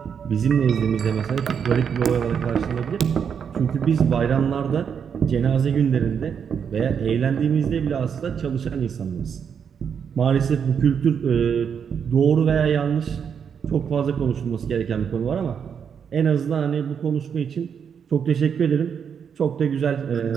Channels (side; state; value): left; quieter; 7.3 dB